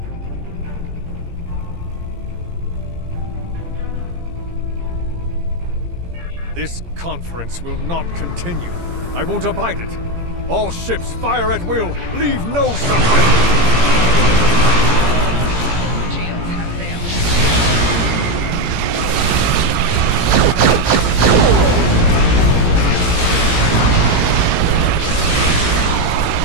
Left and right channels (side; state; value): left; late; 17 ms